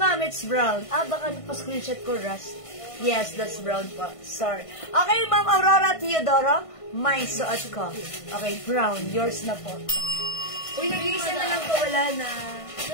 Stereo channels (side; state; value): right; late; 1.5 ms